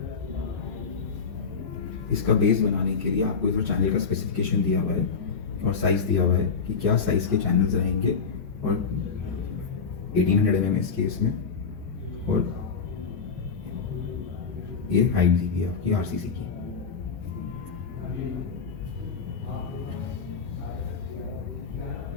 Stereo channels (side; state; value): right; quieter; 5.5 dB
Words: इसका बेस बनाने के लिए आपको इधर चैनल का स्पेसिफिकेशन दिया हुआ है और साइज़ दिया हुआ है कि क्या साइज़ के चैनल्स रहेंगे, और 1800 mm इस केस में, और ये हाइट दी हुई है आपकी RCC की।